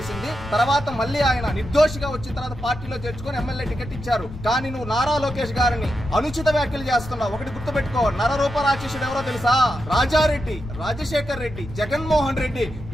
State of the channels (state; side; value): noise; left; rumble, 13 dB below the sound